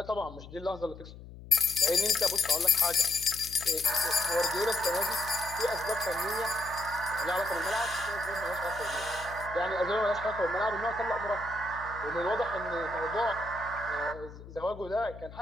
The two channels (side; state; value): left; noise; hum, 15 dB below the sound